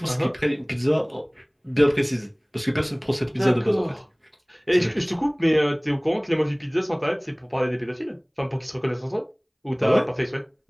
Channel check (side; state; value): both; identical; correlation 1.00